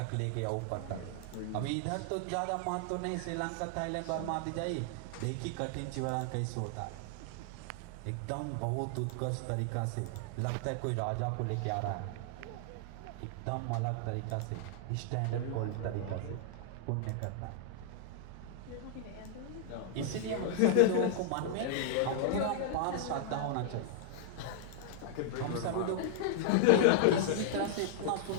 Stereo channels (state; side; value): different; both; correlation -0.01